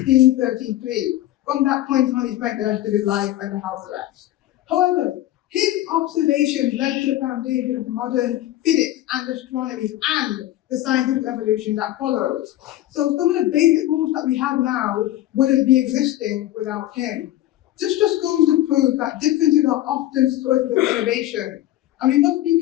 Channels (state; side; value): quieter; right; 14.5 dB